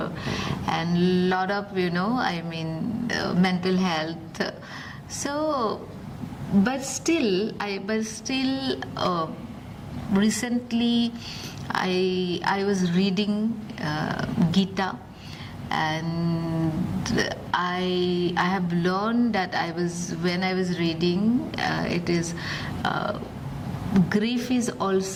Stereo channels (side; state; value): both; identical; correlation 1.00